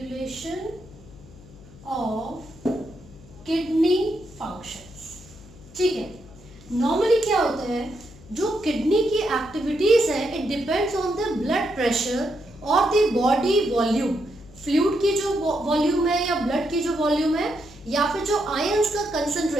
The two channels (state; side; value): noise; left; hum, 21 dB below the sound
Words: of kidney functions. ठीक है, normally क्या होता है, जो kidney की activities है it depends on the blood pressure और the body volume. Fluid की जो वॉल्यूम है या ब्लड की जो वॉल्यूम है या फिर जो आयंस का